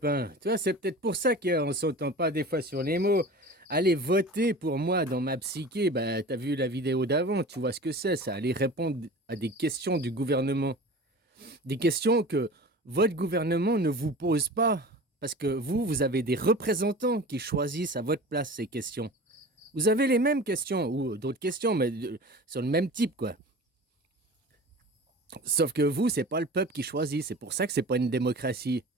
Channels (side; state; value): both; normal; correlation 0.37